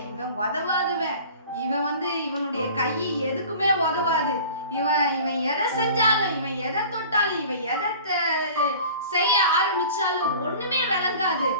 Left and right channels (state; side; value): inverted; both; correlation -0.43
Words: இவன் உதவாதவன், இவன் இவனுடைய கை எதுக்குமே உதவாது, இவன் எதை செஞ்சாலும், இவன் எதை தொட்டாலும், இவன் எதை செய்ய ஆரம்பிச்சாலும் ஒண்ணுமே விளங்காது